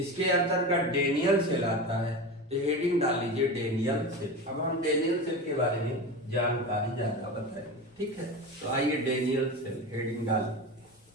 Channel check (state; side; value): normal; both; correlation 0.26